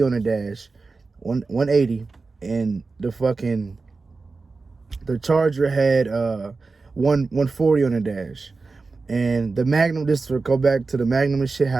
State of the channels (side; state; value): left; quieter; 4.0 dB